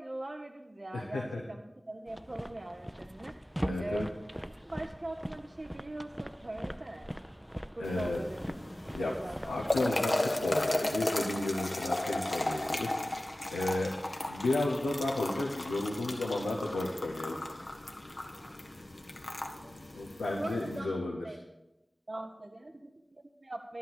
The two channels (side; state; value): both; normal; correlation 0.96